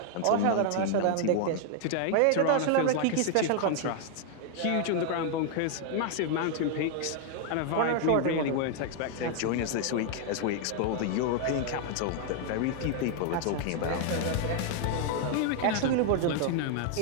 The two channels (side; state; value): both; different; correlation 0.00